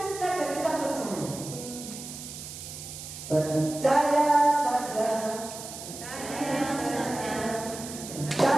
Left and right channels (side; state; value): right; noise; hiss, 11 dB below the sound